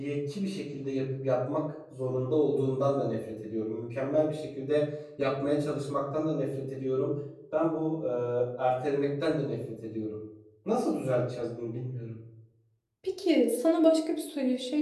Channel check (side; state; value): both; identical; correlation 1.00